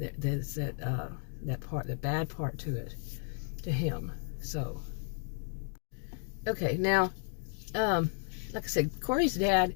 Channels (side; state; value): right; silent; 55 dB below the other